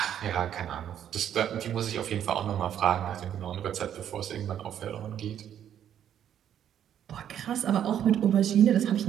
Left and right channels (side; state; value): left; quieter; 9.9 dB